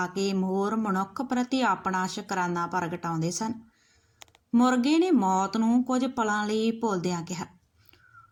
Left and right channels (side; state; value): both; identical; correlation 1.00